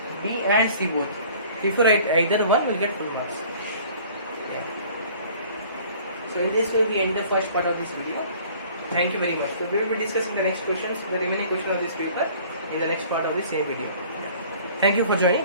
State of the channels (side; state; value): both; inverted; correlation -0.51